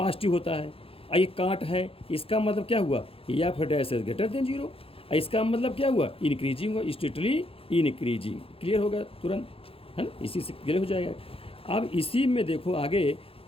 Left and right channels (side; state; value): right; late; 0.27 ms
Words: होता है, और ये काट है, इसका मतलब क्या हुआ, या फिर डैश एस ग्रेटर देन 0, इसका मतलब क्या हुआ, इंक्रीजिंग हुआ, स्ट्रिक्टली इंक्रीजिंग, क्लियर होगा तुरंत, है ना, इसी से क्लियर हो जाएगा। अब इसी में देखो आगे